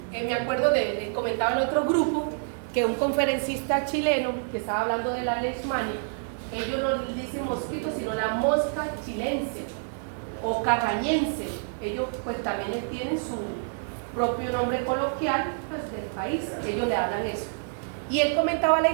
me acuerdo les comentaba en otro grupo, que un conferencista chileno que estaba hablando de la leishmania, ellos no dicen mosquito, sino la mosca chilense o carrañense. Ellos pues también tienen su propio nombre coloquial pues, del país, ellos le hablan eso. Y él comentaba la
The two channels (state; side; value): silent; left; digital silence